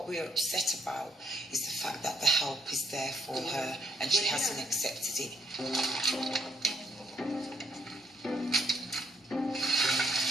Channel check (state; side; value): normal; both; correlation 0.72